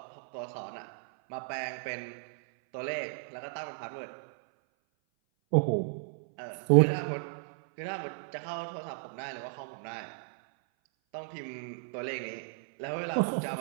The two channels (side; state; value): left; silent; 55 dB below the other